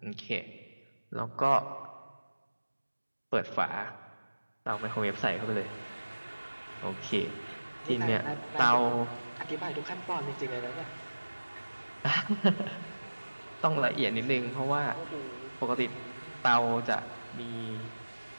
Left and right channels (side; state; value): both; inverted; correlation -1.00